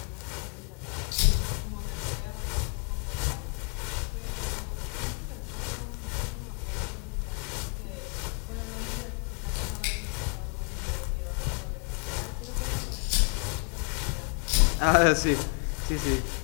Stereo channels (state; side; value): quieter; right; 35.7 dB